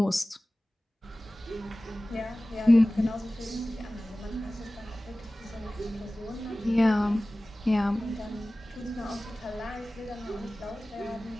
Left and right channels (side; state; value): both; normal; correlation 0.97